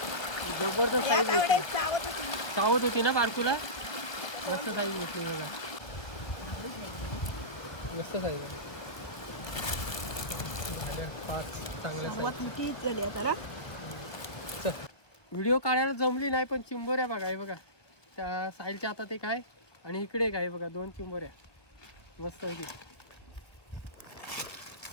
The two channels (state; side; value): late; right; 1.1 ms